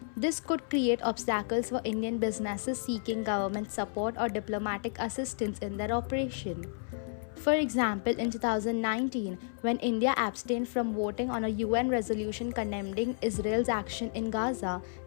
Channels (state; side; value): silent; right; 57 dB below the other